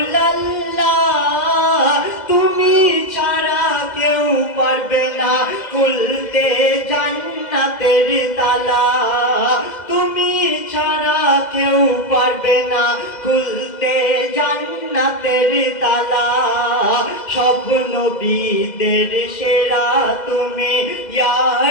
তুমি ছাড়া কেউ পারবে না খুলতে জান্নাতের তালা, তুমি ছাড়া কেউ পারবে না খুলতে জান্নাতের তালা। সব নবীদের সেরা তুমি, ইয়া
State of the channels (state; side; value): late; right; 2.1 ms